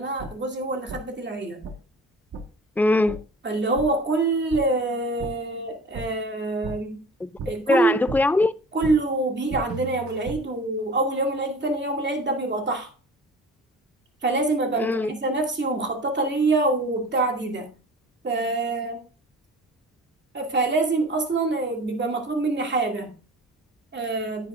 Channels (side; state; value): both; normal; correlation 0.41